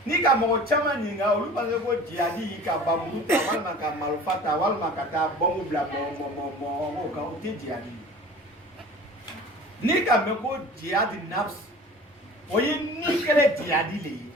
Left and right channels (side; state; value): both; normal; correlation 0.42